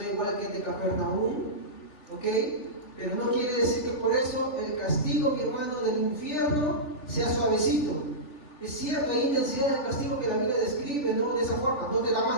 igual que el de Capernaum, ¿ok? Pero no quiere decir que por eso el castigo, mi hermano, del infierno sea suavecito. Es cierto, hay intensidad del castigo que la Biblia describe, ¿no? De esa forma, no te da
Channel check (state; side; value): late; right; 3.4 ms